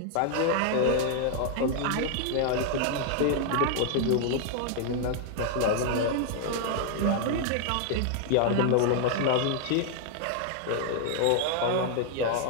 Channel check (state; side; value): different; both; correlation 0.00